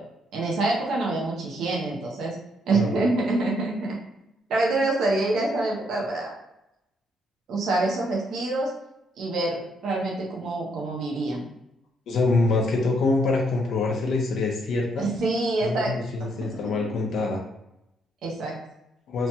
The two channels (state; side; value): normal; both; correlation 0.73